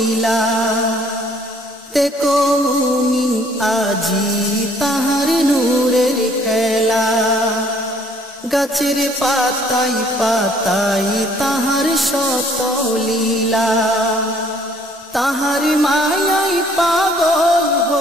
देखो मुमिन आजी ताहार नूरेर खेला गाছের পাতায় পাতায় তাহার শত লীলা তাহার মায়ায় পাগল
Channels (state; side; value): normal; both; correlation 0.61